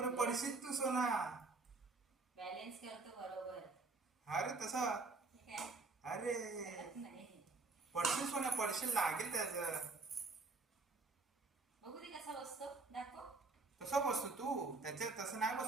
पडशील तू सोना. बॅलन्स करतो बरोबर. अरे तसा. अरे पडशील सोन्या, पडशील, लागेल त्याचं. बघू दे कसा बसतो, दाखव. कसा बसतो तू? त्याच्या तसं नाही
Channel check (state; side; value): quieter; left; 3.8 dB